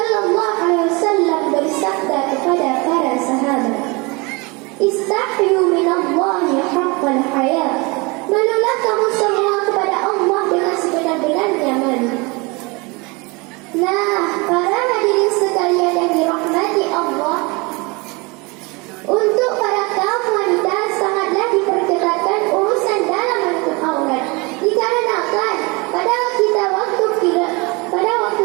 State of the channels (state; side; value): quieter; left; 27.2 dB